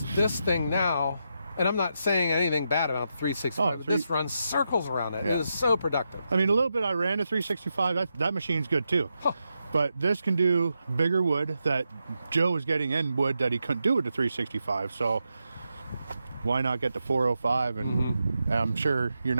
this thing now, and I'm not saying anything bad about the 365, but this runs circles around it. It is so productive. I mean, a little bit I ran the 365. That machine's good too. But this can do bigger wood that Joe was getting in wood that he couldn't do with the 365. So why not get the 405? And I'm sure you're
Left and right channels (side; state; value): both; inverted; correlation -0.85